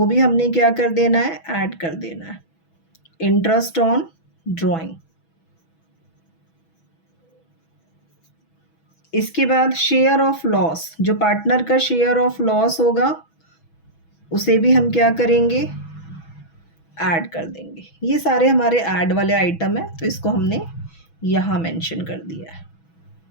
भी हमने क्या कर देना है, ऐड कर देना है, इंटरेस्ट ऑन ड्राइंग। इसके बाद शेयर ऑफ लॉस, जो पार्टनर का शेयर ऑफ लॉस होगा उसे भी हम क्या करेंगे, ऐड कर देंगे। ये सारे हमारे ऐड वाले आइटम है, तो इसको हमने यहाँ मेंशन कर दिया है।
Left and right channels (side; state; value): right; late; 6.1 ms